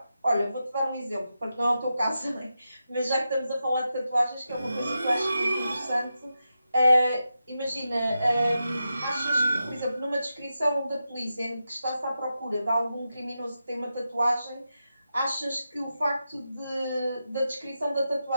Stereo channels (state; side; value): inverted; both; correlation -0.89